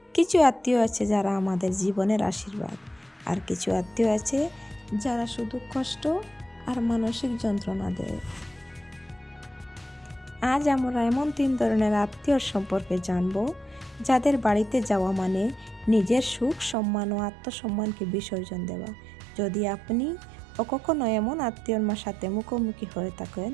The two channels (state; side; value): drops out; left; at 16.8 s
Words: কিছু আত্মীয় আছে যারা আমাদের জীবনের আশীর্বাদ, আর কিছু আত্মীয় আছে যারা শুধু কষ্ট আর মানসিক যন্ত্রণা দেয়। আজ আমরা এমন 3 ধরনের আত্মীয় সম্পর্কে জানব, যাদের বাড়িতে যাওয়া মানে নিজের সুখ, সম্মান ও আত্মসম্মানকে বিসর্জন দেওয়া। যদি আপনি কখনো এমন আত্মীয়র সাথে মুখোমুখি হয়ে থাকেন,